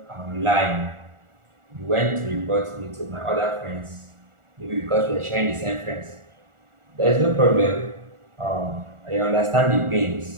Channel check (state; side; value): late; left; 1.4 ms